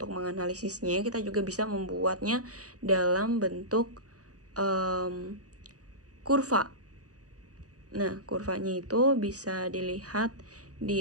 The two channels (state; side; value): late; left; 0.67 ms